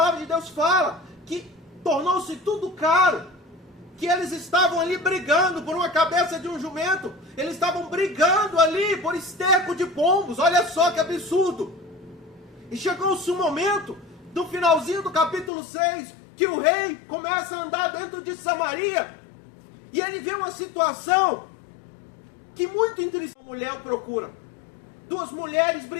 de Deus fala que tornou-se tudo caro, que eles estavam ali brigando por uma cabeça de um jumento, eles estavam brigando ali por esterco de pombos. Olha só que absurdo. E chegou-se um momento, no finalzinho do capítulo 6, que o rei começa a andar dentro de Samaria, e ele vê uma situação que muito interessante. Uma mulher o procura, duas mulheres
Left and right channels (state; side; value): drops out; right; at 15.5 s